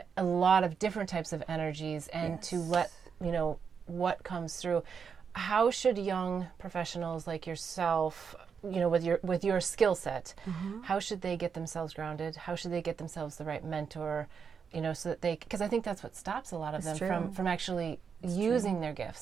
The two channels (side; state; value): left; quieter; 6.5 dB